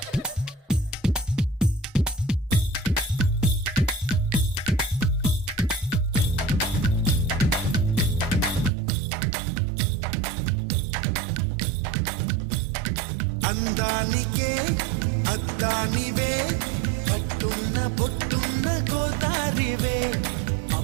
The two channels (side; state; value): left; drops out; at 8.7 s